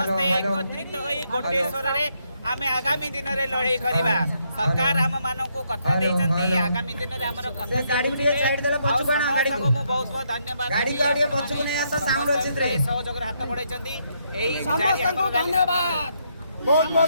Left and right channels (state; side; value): inverted; both; correlation -0.75